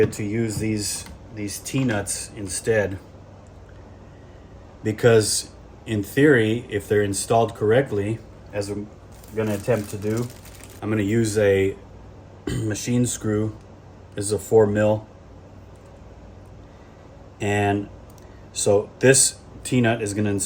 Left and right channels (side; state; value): both; identical; correlation 1.00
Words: to use these T-nuts instead, because in theory, if they're installed correctly, as I'm going to attempt to do, I'm going to use a machine screw. This is a 4mm, and so this T-nut is going to